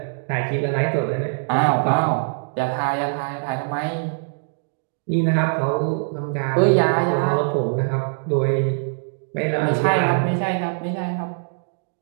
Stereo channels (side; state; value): left; silent; digital silence